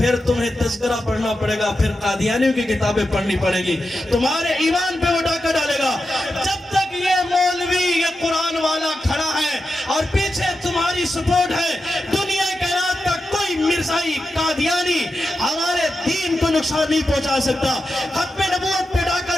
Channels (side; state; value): both; normal; correlation 0.90